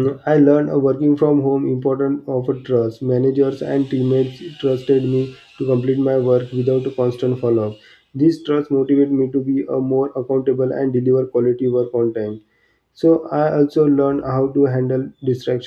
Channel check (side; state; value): both; identical; correlation 1.00